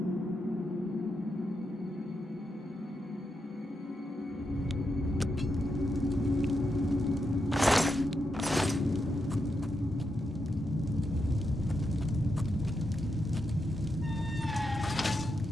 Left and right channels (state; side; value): normal; both; correlation 0.85